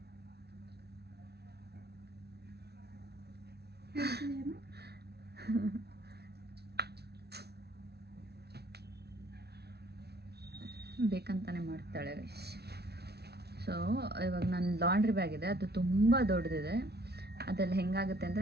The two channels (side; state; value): left; late; 0.48 ms